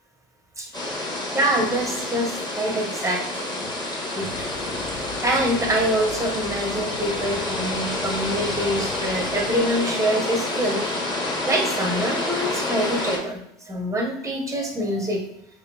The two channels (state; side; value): normal; both; correlation 0.33